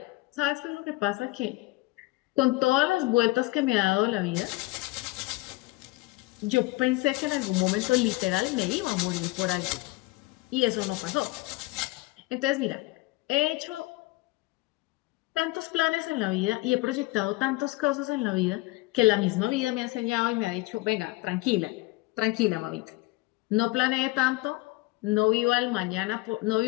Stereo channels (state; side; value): quieter; right; 21.1 dB